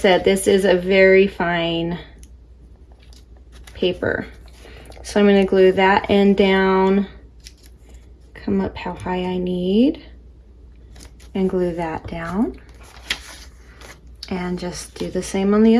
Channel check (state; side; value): identical; both; correlation 1.00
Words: this is a very fine paper. So I'm going to glue that end down, come up how high I need, and glue that down. And just do the same on the